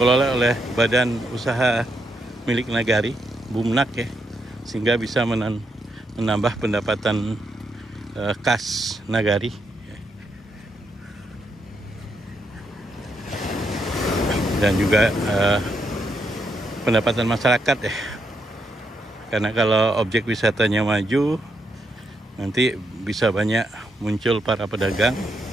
oleh badan usaha milik nagari, Bumnak ya, sehingga bisa menambah pendapatan kas nagari. Dan juga pendapatan masyarakat ya, karena kalau objek wisatanya maju nanti bisa banyak muncul para pedagang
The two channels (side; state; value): both; normal; correlation 0.79